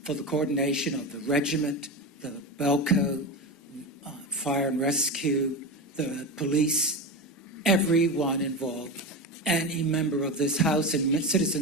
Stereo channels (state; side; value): normal; both; correlation 0.20